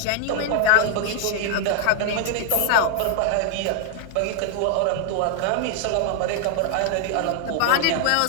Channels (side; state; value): both; different; correlation 0.00